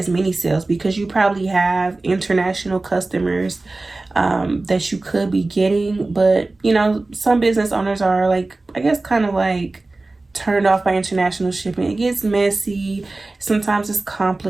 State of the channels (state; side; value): quieter; left; 3.2 dB